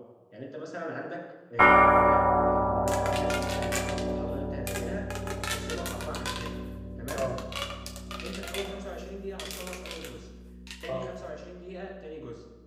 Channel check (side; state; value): both; identical; correlation 1.00